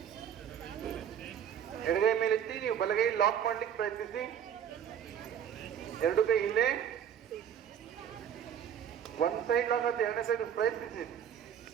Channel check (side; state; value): left; quieter; 9.0 dB